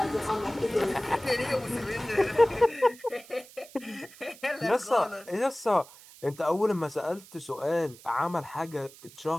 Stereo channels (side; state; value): right; noise; hiss, 21 dB below the sound